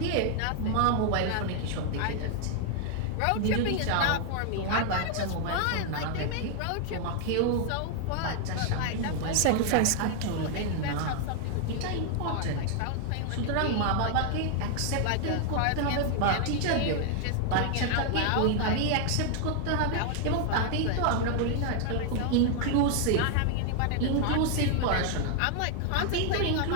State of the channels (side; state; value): both; different; correlation 0.00